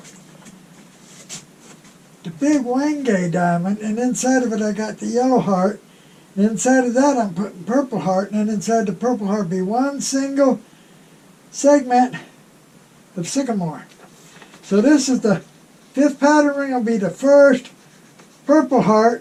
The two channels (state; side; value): identical; both; correlation 1.00